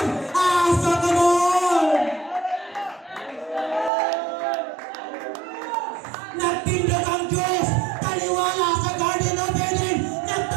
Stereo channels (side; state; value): left; drops out; at 3.9 s